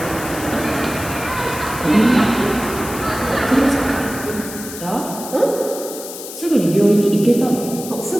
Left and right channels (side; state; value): left; noise; hiss, 11 dB below the sound